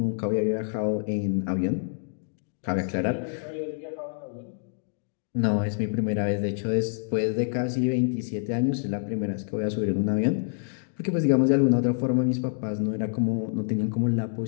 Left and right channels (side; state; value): right; silent; digital silence